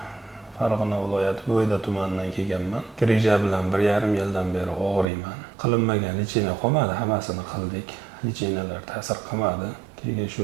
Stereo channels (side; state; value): left; drops out; at 5.1 s